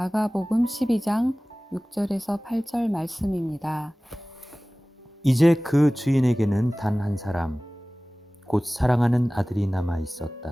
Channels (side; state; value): both; normal; correlation 0.98